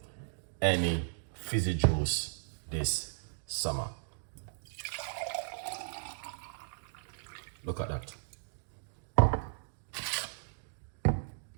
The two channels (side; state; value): left; silent; digital silence